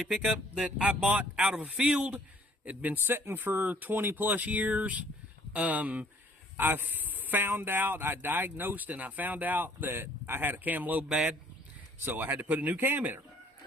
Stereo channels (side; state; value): both; normal; correlation 0.57